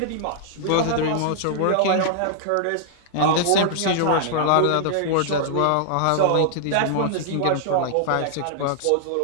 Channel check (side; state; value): both; different; correlation -0.01